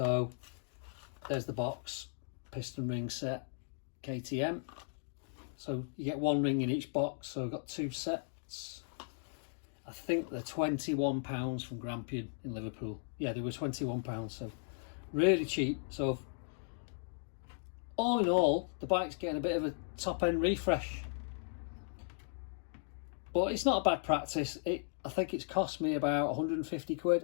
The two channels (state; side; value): silent; right; digital silence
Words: there's the box, piston ring set, KTM. So you get one ring in each box, so I've got two sets. I think they're £21 from Grampian in Liverpool. Yeah, they were £21, so really cheap. So all in all, the bike's getting a bit of a top end refresh. But it's not a bad practice. I think it's cost me about 150